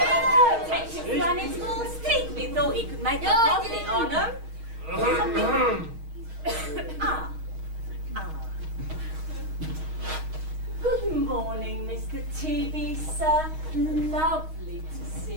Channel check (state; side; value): late; left; 6.4 ms